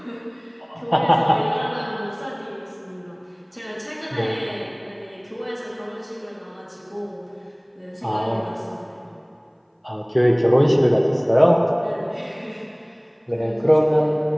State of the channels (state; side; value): identical; both; correlation 1.00